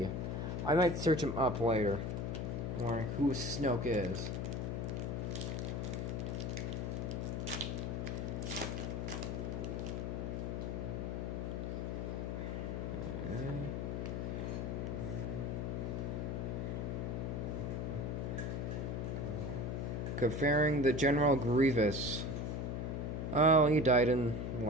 I might search him up later. I'm wondering who Snoke is. Comparing the General Grievous. Oh, he died in the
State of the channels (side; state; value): left; noise; hum, 2 dB below the sound